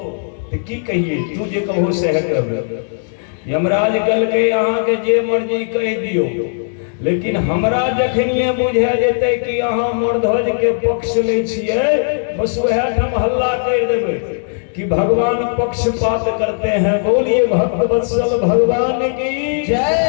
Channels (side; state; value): right; silent; digital silence